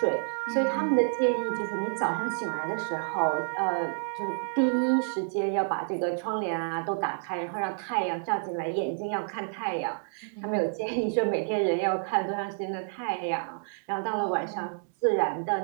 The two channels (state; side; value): silent; left; digital silence